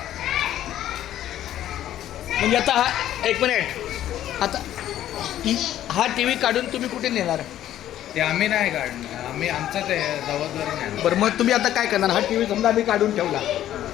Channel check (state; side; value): quieter; right; 12.3 dB